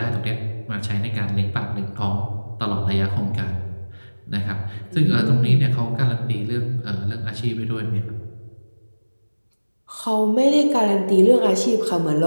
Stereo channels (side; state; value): both; inverted; correlation -1.00